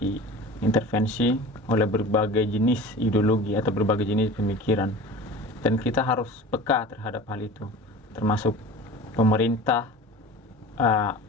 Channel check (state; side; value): normal; both; correlation 0.37